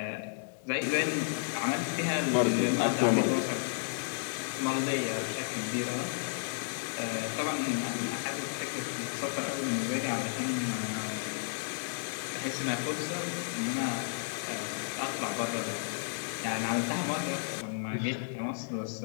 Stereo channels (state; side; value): silent; right; 56 dB below the other